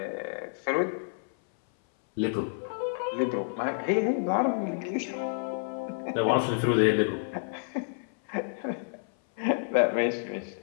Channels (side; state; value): right; silent; 57 dB below the other